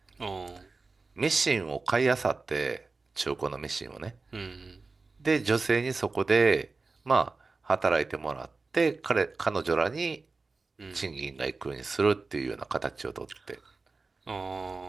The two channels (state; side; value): quieter; left; 3.9 dB